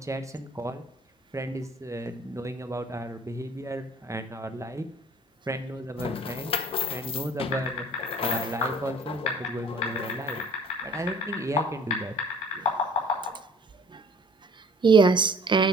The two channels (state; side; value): normal; both; correlation 0.50